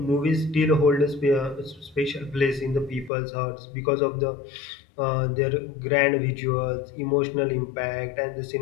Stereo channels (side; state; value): right; drops out; at 3.1 s